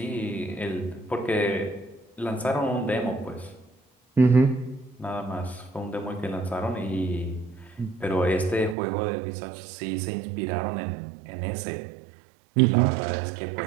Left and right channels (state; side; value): drops out; left; at 8.8 s